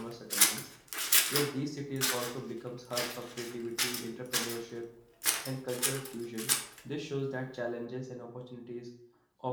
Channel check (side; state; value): both; identical; correlation 1.00